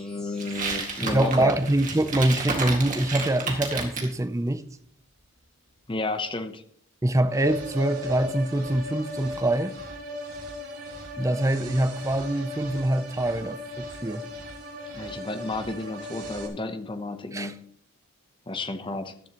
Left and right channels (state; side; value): normal; both; correlation 0.74